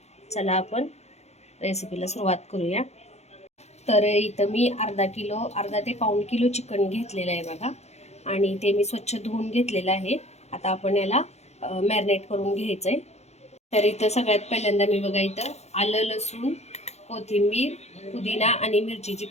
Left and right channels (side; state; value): right; late; 0.32 ms